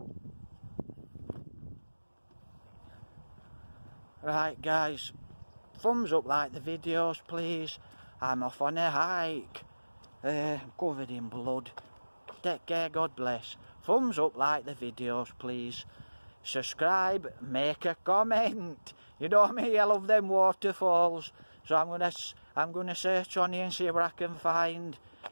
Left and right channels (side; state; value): both; inverted; correlation -1.00